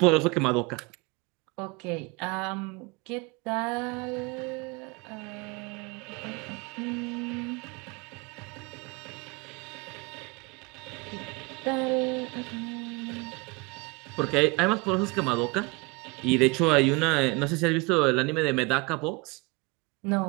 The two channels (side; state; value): left; quieter; 26.4 dB